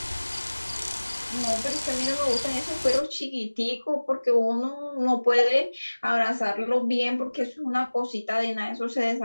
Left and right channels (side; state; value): both; inverted; correlation -1.00